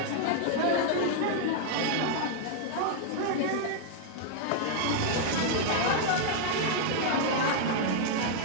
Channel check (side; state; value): both; different; correlation -0.01